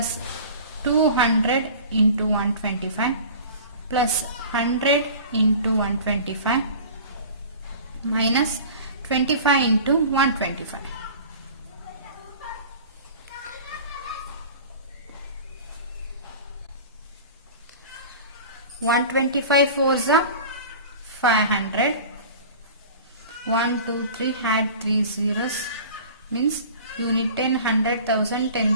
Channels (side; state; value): both; inverted; correlation -0.40